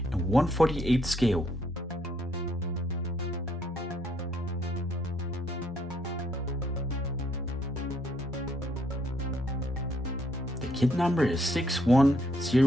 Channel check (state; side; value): normal; both; correlation 0.70